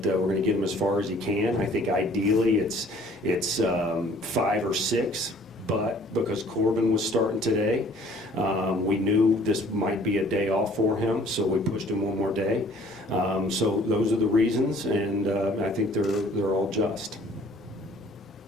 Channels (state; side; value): normal; both; correlation 0.54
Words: we're going to get him as far as he can. I think ideally it's 5 or 6 but because Corbin was starting today, we knew this might be a day off for him, so we pushed him one more day. So those are the reasons, and I think they're all just.